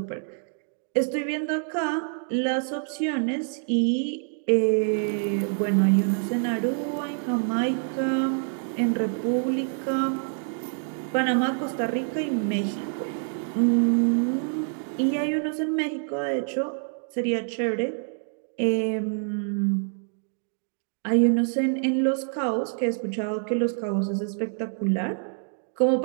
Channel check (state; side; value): silent; left; 55 dB below the other